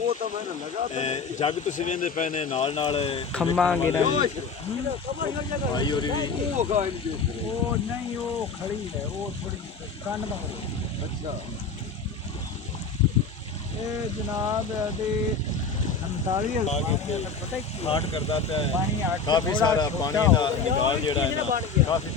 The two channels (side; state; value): right; quieter; 4.8 dB